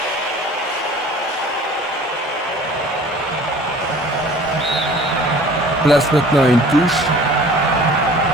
Place maintenant une touche.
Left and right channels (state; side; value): normal; both; correlation 0.47